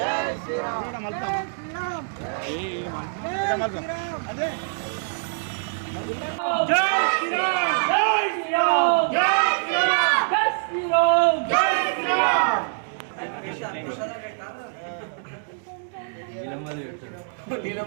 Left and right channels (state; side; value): silent; left; digital silence